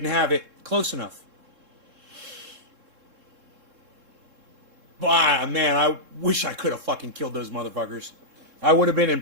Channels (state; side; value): late; left; 3.7 ms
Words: have it close enough. But, man, I wish I could have fucking killed those motherfuckers. I would have been in